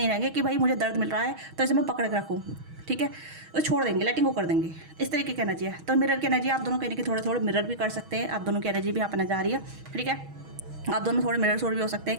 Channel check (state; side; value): late; left; 6.3 ms